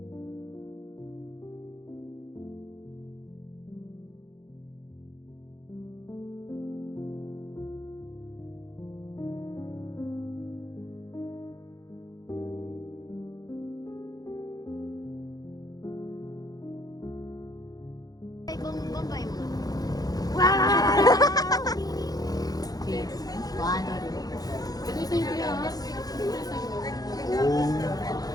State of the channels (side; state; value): right; late; 0.18 ms